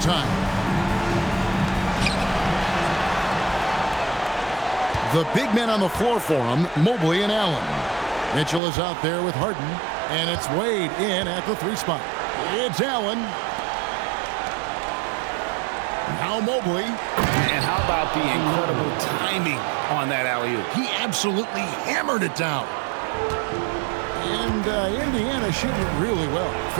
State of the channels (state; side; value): drops out; left; at 8.6 s